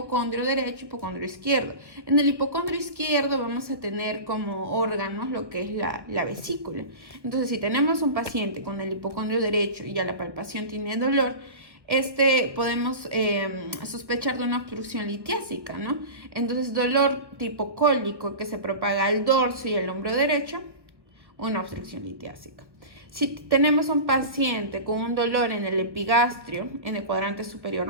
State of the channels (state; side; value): late; left; 1.3 ms